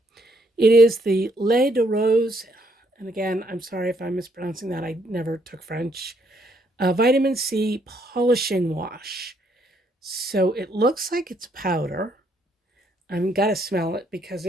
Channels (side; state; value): both; normal; correlation 0.71